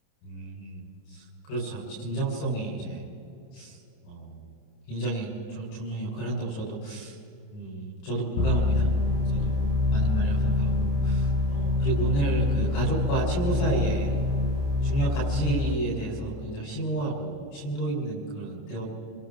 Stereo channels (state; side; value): late; right; 28 ms